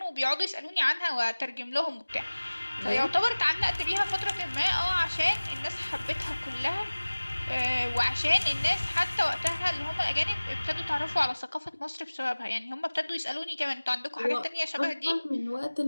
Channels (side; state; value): both; inverted; correlation -1.00